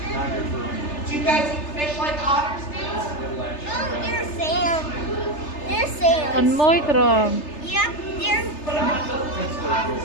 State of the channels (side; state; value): right; late; 3.3 ms